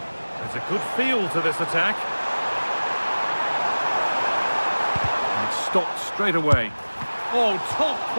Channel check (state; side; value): inverted; both; correlation -1.00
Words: There's a good feel to this attack. And it's stopped straight away. Oh, top